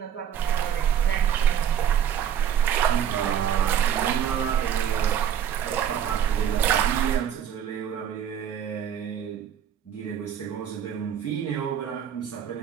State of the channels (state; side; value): quieter; left; 9.1 dB